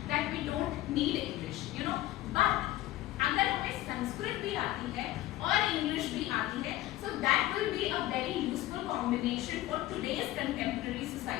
that we don't need English, you know, but अगर हमें संस्कृत भी आती है और इंग्लिश भी आती है, so that will be a very useful combination for today's contemporary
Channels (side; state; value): right; quieter; 15.9 dB